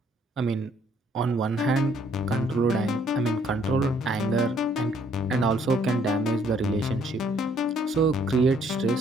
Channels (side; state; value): both; normal; correlation 0.65